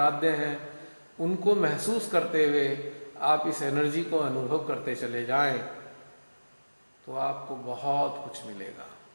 हैं, उनको महसूस करते हुए आप इस एनर्जी को अनुभव करते चले जाएं तो आपको बहुत कुछ मिलेगा।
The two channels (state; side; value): inverted; both; correlation -1.00